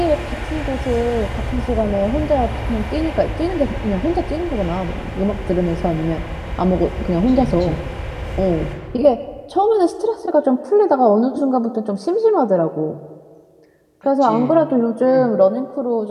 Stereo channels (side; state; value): both; identical; correlation 1.00